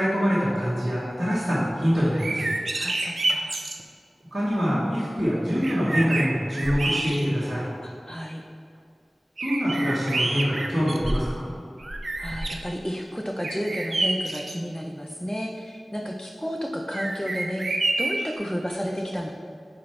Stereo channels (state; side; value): normal; both; correlation 0.97